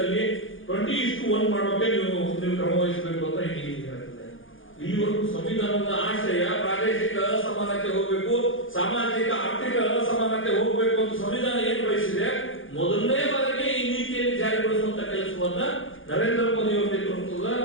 20:1 ಮಾಡೋಕೆ ನೀವು ಕ್ರಮ ವಹಿಸಬೇಕು ಅಂತ ಹೇಳ್ತದೆ. ಇಲ್ಲಿವರೆಗೂ ಸಂವಿಧಾನದ ಆಶಯ ಪ್ರಾದೇಶಿಕ ಅಸಮಾನತೆ ಹೋಗಬೇಕು, ಸಾಮಾಜಿಕ ಆರ್ಥಿಕ ಅಸಮಾನತೆ ಹೋಗಬೇಕು ಅಂತ ಸಂವಿಧಾನ ಏನು ಬಯಸಿದೆ ಮೊದಲನೇ ಬಾರಿಗೆ ಈ ನೀತಿಯಲ್ಲಿ ಜಾರಿಗೊಳಿಸುವಂತ ಕೆಲಸವನ್ನ ನರೇಂದ್ರ ಮೋದಿ ಅವರ ನೇತೃತ್ವದ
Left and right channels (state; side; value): late; right; 0.58 ms